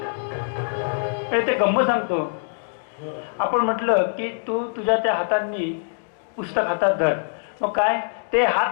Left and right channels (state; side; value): silent; right; digital silence